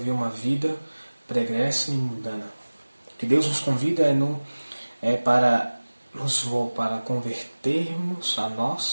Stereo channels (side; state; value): both; inverted; correlation -1.00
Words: uma vida pregressa e mundana. O que Deus nos convida para convertermos a